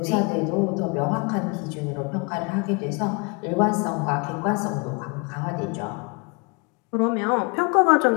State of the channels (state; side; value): quieter; right; 31.4 dB